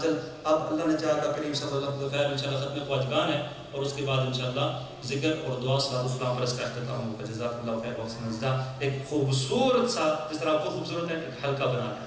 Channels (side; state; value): both; identical; correlation 1.00